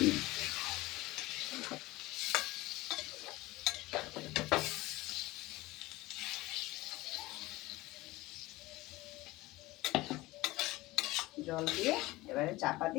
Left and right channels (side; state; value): right; quieter; 19.7 dB